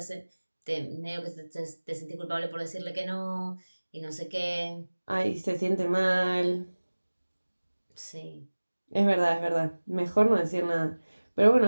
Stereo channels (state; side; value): inverted; both; correlation -1.00